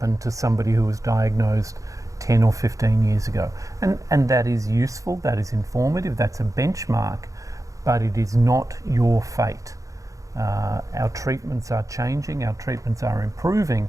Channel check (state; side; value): late; left; 0.16 ms